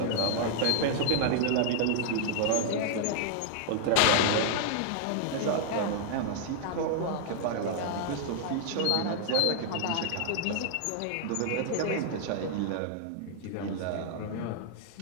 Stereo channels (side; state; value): both; different; correlation -0.01